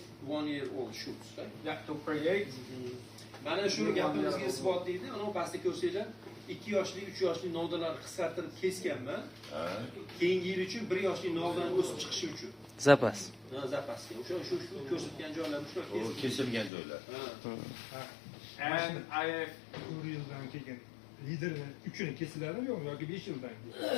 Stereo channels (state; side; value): drops out; right; at 16.7 s